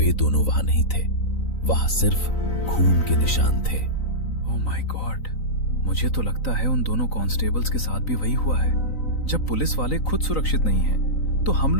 दोनों वहां नहीं थे। वहां सिर्फ खून के निशान थे। ओह माय गॉड, मुझे तो लगता है उन दोनों कांस्टेबल्स के साथ भी वही हुआ है। जब पुलिस वाले खुद सुरक्षित नहीं हैं, तो हम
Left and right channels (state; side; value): late; right; 3.9 ms